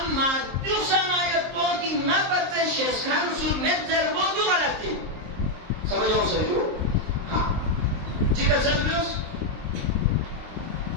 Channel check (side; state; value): left; late; 23 ms